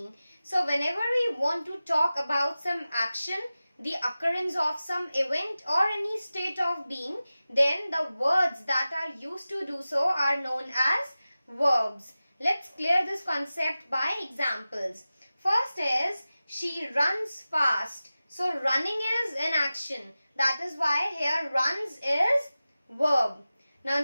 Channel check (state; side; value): inverted; both; correlation -0.96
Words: So whenever we want to talk about some action, the occurrence of some event or any state of being, then the words that are used to do so are known as verbs. Let's clear this concept by examples. First is, she runs fast. So running is an action. That is why here runs is verb. Now